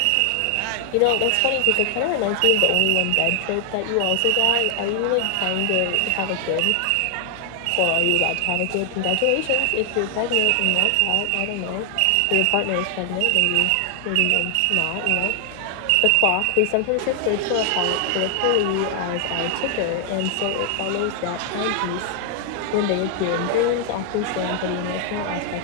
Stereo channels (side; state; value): both; different; correlation 0.00